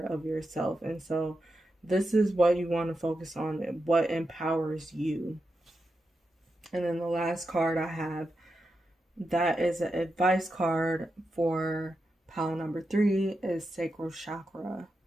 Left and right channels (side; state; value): both; normal; correlation 0.88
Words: of yourself. And so this is what you want to focus on, what empowers you. And then the last card I have, that is an advice card for pile number 3, is sacral chakra.